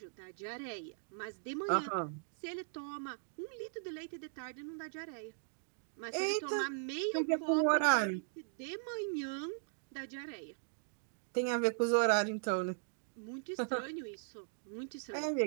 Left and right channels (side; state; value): left; silent; digital silence